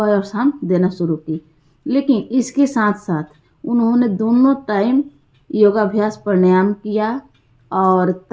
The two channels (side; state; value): both; identical; correlation 1.00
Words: और शाम देना शुरू की। लेकिन इसके साथ साथ उन्होंने दोनों टाइम योगाभ्यास प्राणायाम किया और